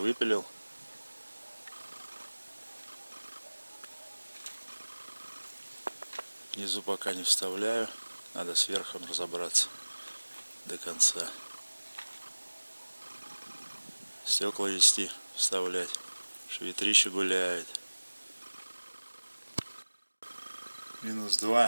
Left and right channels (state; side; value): inverted; both; correlation -1.00